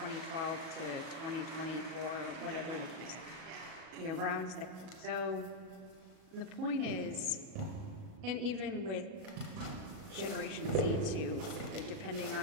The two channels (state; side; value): late; left; 38 ms